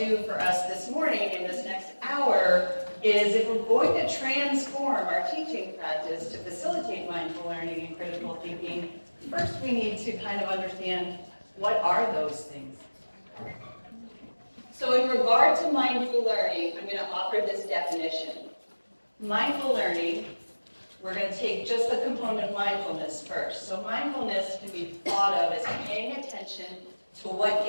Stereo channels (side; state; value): both; inverted; correlation -1.00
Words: do for us this morning in this next hour is, if we're going to transform our teaching practice to facilitate mindful learning and critical thinking, first we need to kind of understand, what are those things? So in regard to mindful learning, I'm going to offer this definition. Mindful learning, we're going to take just the component of mindfulness first. So mindfulness can be thought of as paying attention to what